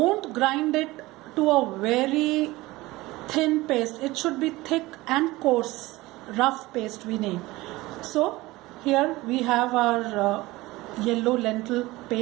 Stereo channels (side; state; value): left; quieter; 19.7 dB